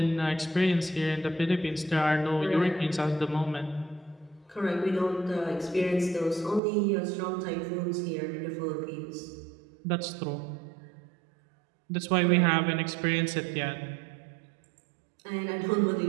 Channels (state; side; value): drops out; left; at 6.6 s